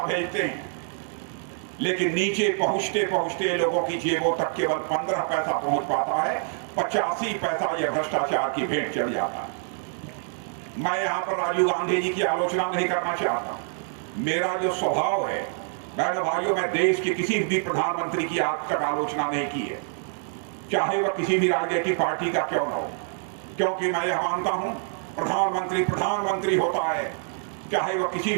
भेजते हैं, लेकिन नीचे पहुंचते पहुंचते लोगों की जेबों तक केवल 15 पैसा पहुंच पाता है। 85 पैसा यह भ्रष्टाचार की भेंट चढ़ जाता है। मैं यहां पर राजीव गांधी जी की आलोचना नहीं करना चाहता। मेरा जो स्वभाव है, बहनों भाइयों, मैं देश के किसी भी प्रधानमंत्री की आज तक आलोचना नहीं की है, चाहे वह किसी भी राजनीतिक पार्टी का क्यों न हो, क्योंकि मैं यह मानता हूं प्रधानमंत्री प्रधानमंत्री होता है, चाहे वह किसी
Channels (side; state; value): left; silent; 61 dB below the other